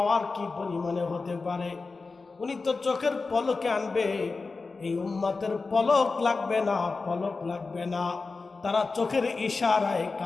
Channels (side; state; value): right; quieter; 4.1 dB